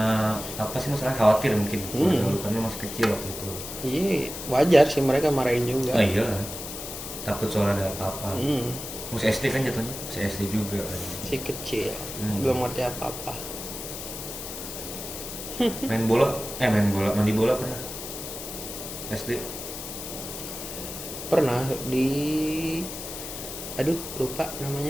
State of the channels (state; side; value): noise; left; hiss, 8 dB below the sound